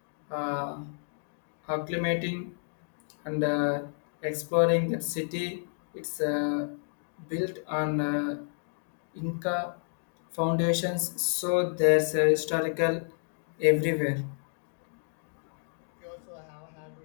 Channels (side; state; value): right; silent; digital silence